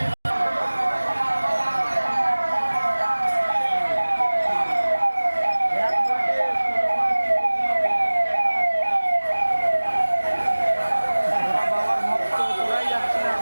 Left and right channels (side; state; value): both; inverted; correlation -1.00